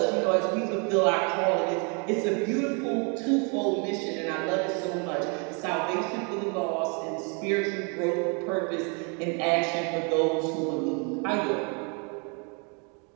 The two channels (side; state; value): left; quieter; 35.3 dB